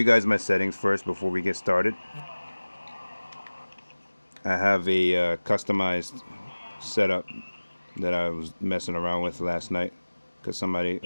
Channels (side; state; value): both; inverted; correlation -1.00